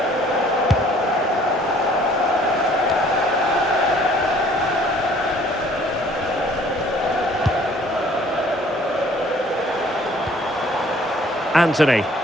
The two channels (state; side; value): normal; both; correlation 0.57